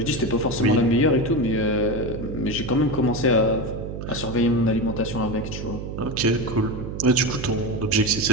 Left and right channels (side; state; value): right; noise; hum, 7 dB below the sound